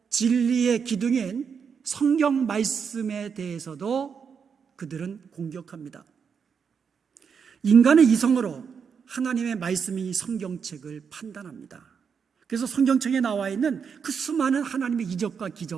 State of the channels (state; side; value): quieter; left; 6.5 dB